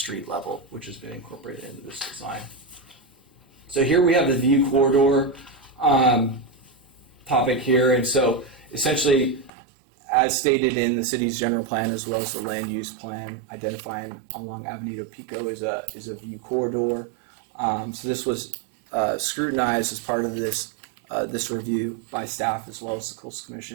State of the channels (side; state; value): left; drops out; at 9.5 s